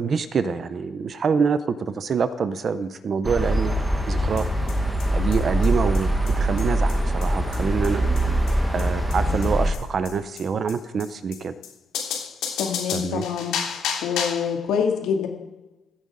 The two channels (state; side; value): normal; both; correlation 0.82